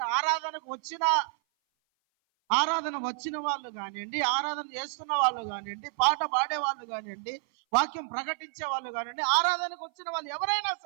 ఆరాధన వచ్చిన వాళ్ళు కానివ్వండి, ఆరాధన చేస్తున్న వాళ్ళు కానివ్వండి, పాట పాడే వాళ్ళు కానివ్వండి, వాక్యం ప్రకటించే వాళ్ళు కానివ్వండి, ఆరాధనకు వచ్చిన వాళ్ళు ఎవరైనా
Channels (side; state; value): left; silent; 56 dB below the other